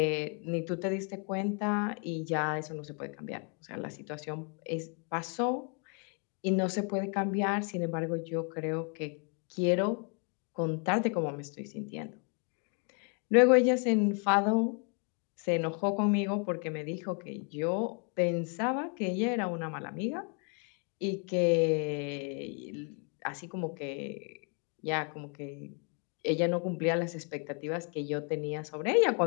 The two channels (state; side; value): quieter; right; 38.4 dB